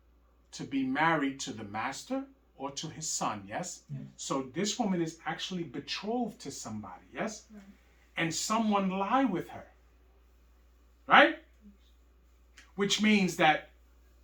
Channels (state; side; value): identical; both; correlation 1.00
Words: to be married to the master or to his son, yes? Yes. So this woman is actually betrothed to somebody, yes? Right. And someone lie with her, right? Which means that